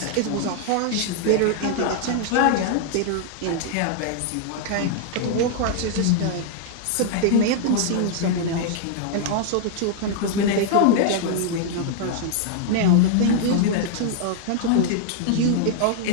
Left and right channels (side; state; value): both; different; correlation -0.01